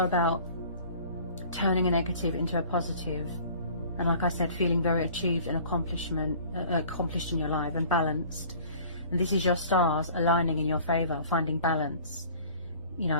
about turning a negative into a positive. And like I said, feeling very achieved and accomplished in your life and balanced. And this is your stars aligning in your favor, finding balance. You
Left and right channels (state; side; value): inverted; both; correlation -0.48